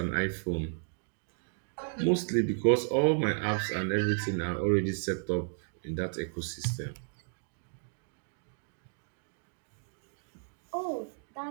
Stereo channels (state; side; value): silent; left; digital silence